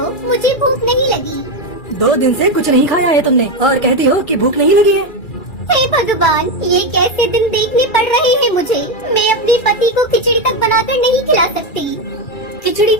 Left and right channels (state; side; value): late; right; 2.4 ms